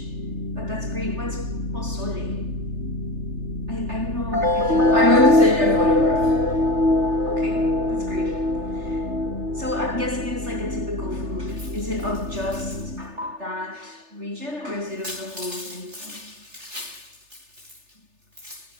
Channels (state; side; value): late; left; 3.3 ms